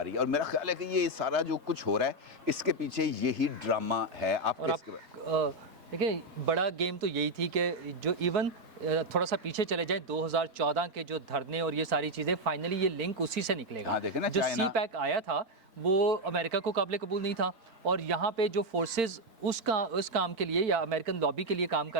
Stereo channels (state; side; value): late; left; 3.9 ms